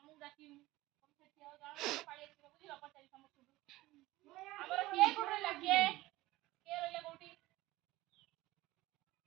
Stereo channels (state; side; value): quieter; left; 18.3 dB